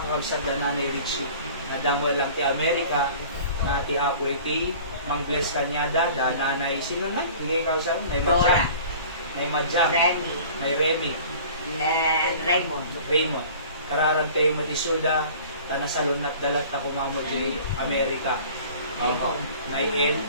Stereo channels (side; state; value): both; inverted; correlation -0.45